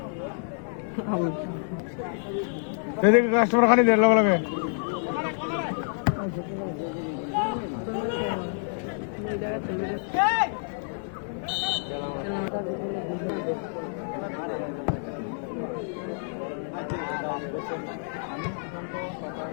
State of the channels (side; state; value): right; silent; digital silence